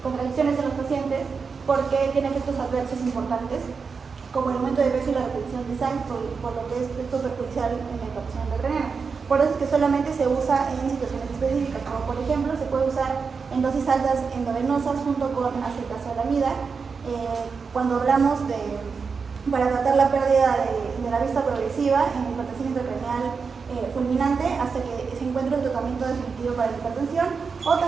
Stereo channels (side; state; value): left; quieter; 5.3 dB